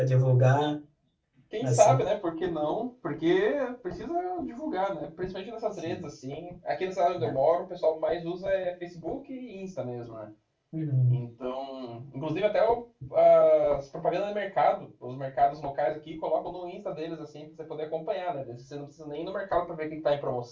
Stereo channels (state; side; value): identical; both; correlation 1.00